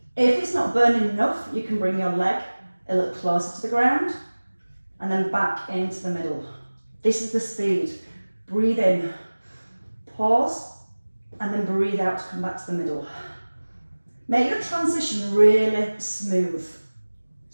If it's not burning enough, you can bring your leg a little closer to the ground and then back into the middle. This is the speed. Breathe in, pause, and then breathe out to come back to the middle. Make your transition really smooth.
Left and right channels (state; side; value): inverted; both; correlation -1.00